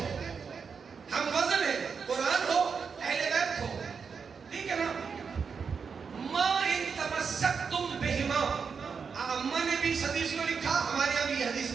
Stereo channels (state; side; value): quieter; left; 5.8 dB